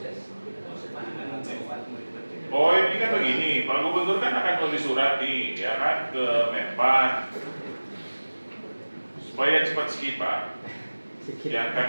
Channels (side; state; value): both; inverted; correlation -1.00